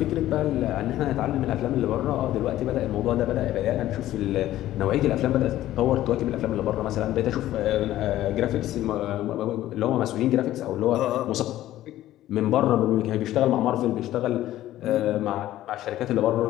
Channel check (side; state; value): right; quieter; 14.1 dB